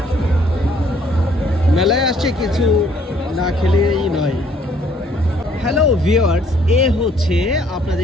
মেলায় আসছে, কিছু না খেলেই নয়। হ্যালো ভিউয়ার্স, এ হচ্ছে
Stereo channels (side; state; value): both; normal; correlation 0.63